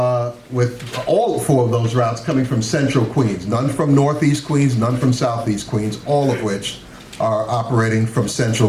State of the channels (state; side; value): identical; both; correlation 1.00